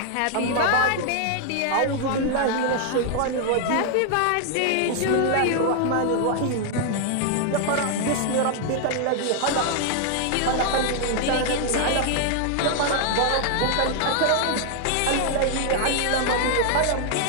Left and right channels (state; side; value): different; both; correlation 0.00